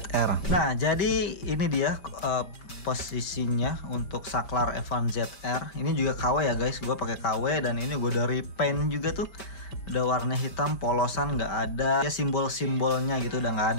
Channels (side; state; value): right; late; 5.1 ms